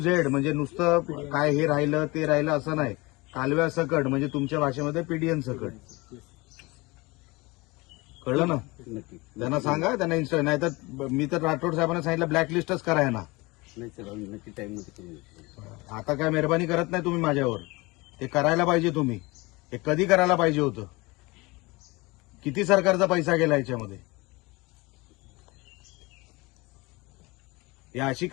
Z म्हणजे नुसतं काय हे राहिलं ते राहिलं असं नाही, कालव्या सकट म्हणजे तुमच्या भाषेमध्ये पीडीएन सकट, कळलं ना? त्यांना सांगा, त्यांना इन्स्टा नाही तर मी तर राठोड साहेबांना सांगितलं ब्लॅकलिस्टच कराय ना। आता काय मेहरबानी करत नाही तुम्ही माझ्यावर, ते करायला पाहिजे तुम्ही। हे कधी करायला पाहिजे होतं? किती सरकारचा पैसा गेला याच्यामध्ये? या अशी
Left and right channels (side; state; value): right; quieter; 23.8 dB